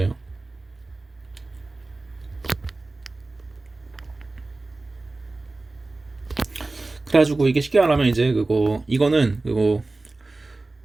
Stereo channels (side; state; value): left; quieter; 3.2 dB